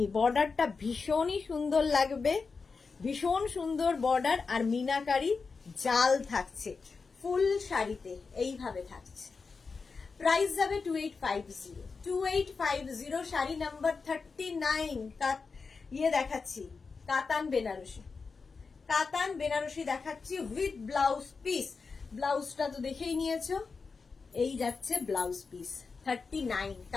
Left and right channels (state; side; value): quieter; right; 4.7 dB